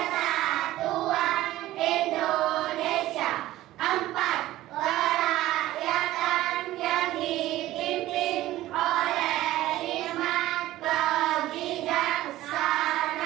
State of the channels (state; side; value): quieter; left; 15.6 dB